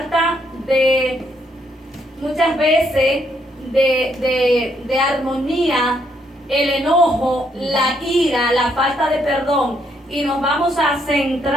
muchas veces de armonía el enojo, la ira, la falta de perdón. Y nos vamos a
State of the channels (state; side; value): normal; both; correlation 0.73